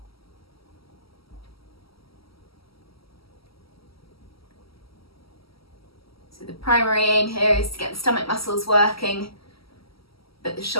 So the primary aim here is to get the stomach muscles working, but the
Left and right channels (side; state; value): right; late; 0.75 ms